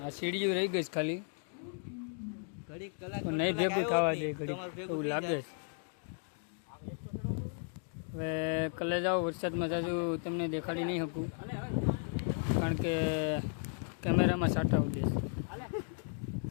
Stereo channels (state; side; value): silent; right; 54 dB below the other